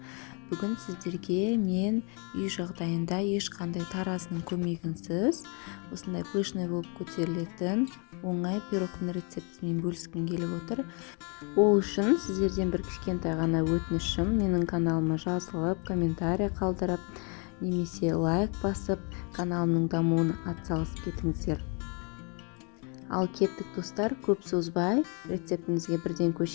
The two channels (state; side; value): quieter; right; 35.1 dB